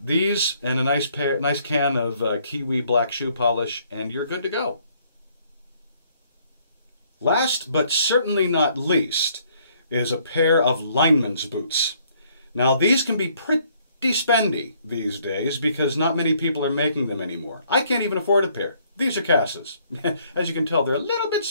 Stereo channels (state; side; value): inverted; both; correlation -0.65